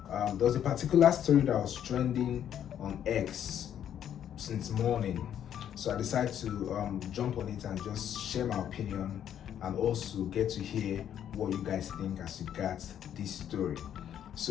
there was a particular story that was trending on X since morning. So I decided to jump on it and just share my opinion and also get to hear what you guys think as you got this story.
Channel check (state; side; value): quieter; right; 9.9 dB